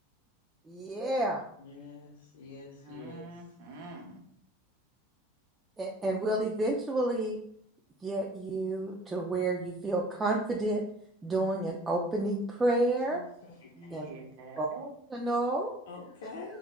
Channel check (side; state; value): both; normal; correlation 0.50